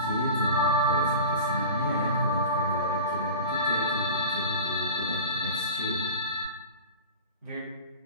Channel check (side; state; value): both; inverted; correlation -0.32